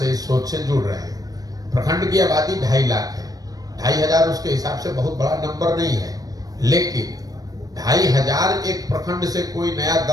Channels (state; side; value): late; left; 0.18 ms